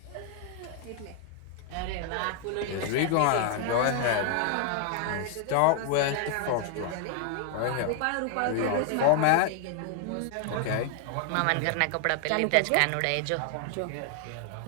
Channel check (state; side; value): different; both; correlation 0.00